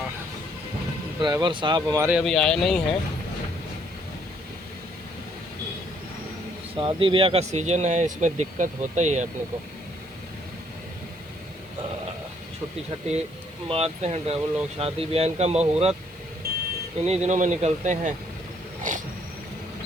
ड्राइवर साहब हमारे अभी आए नहीं हैं, शादी ब्याह का सीज़न है, इसमें दिक्कत होता ही है अपने को। छुट्टी छुट्टी मारते हैं ड्राइवर लोग, शादी ब्याह इनका मुहूर्त इन्हीं दिनों में निकलते हैं।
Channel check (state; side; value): noise; right; hiss, 29 dB below the sound